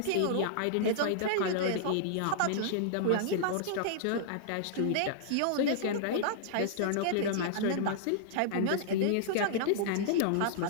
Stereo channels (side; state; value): both; different; correlation -0.01